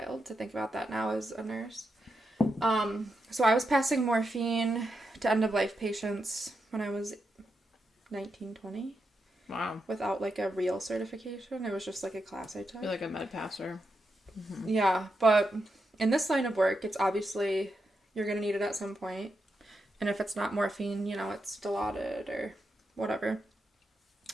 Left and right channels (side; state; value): both; normal; correlation 0.85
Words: to think about that now as a nurse. So I was passing morphine to end-of-life patients when I was 19, 20. Wow. Without, like, a real certification. It was just, like, a class I took. You're like a med passer. Mm-hmm. Yeah, but in this line of work, it's obviously, you're going to need it at some point. And if it's not morphine, you know, it's Dilaudid or whatever.